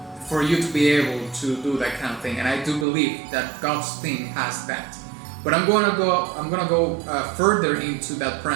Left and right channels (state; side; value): drops out; left; at 2.9 s